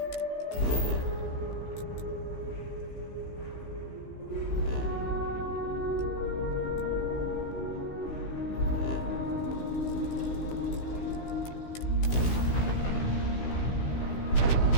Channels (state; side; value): late; right; 16 ms